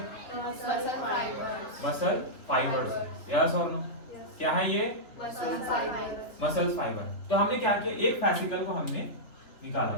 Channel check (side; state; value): right; late; 3.6 ms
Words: Muscle fibres. Muscle fibres. Yes और नो? क्या है ये? Muscle fibres. Muscle fibre. तो हमने क्या किया? एक फैसिकल को हमने निकाला